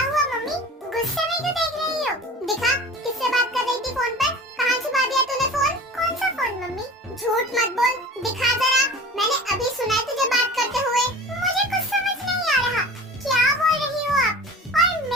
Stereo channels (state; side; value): normal; both; correlation 0.39